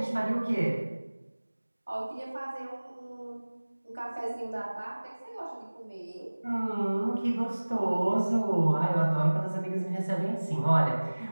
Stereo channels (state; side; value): inverted; both; correlation -1.00